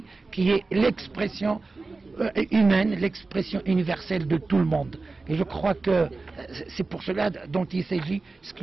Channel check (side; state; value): left; quieter; 3.6 dB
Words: qui est l'expression humaine, l'expression universelle de tout le monde. Et je crois que c'est pour cela dont il s'agit, ce que